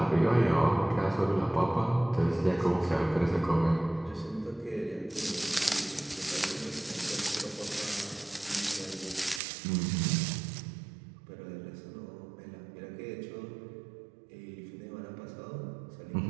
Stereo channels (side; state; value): left; drops out; at 9.4 s